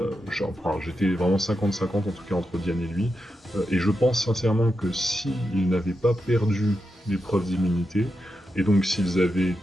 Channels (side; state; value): both; normal; correlation 0.87